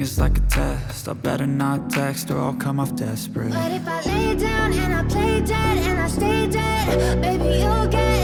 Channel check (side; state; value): both; identical; correlation 1.00